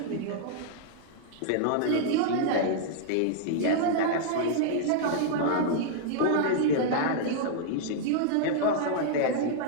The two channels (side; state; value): both; different; correlation -0.01